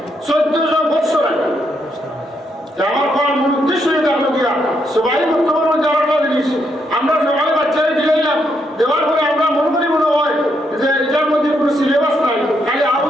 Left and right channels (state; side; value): normal; both; correlation 0.77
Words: 1400 বছর আগে। আমার পড়ার মূল উদ্দেশ্য এটা হলো গিয়া সবাই বর্তমানে যাওয়াটা জিনিস আমরা সবাই বাচ্চারা দিলাম, দেওয়ার পরে আমরা মনে হয় যে এটার মধ্যে কোনো সিলেবাস নাই, খালি